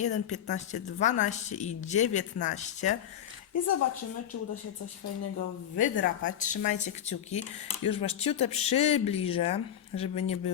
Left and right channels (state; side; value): quieter; right; 10.1 dB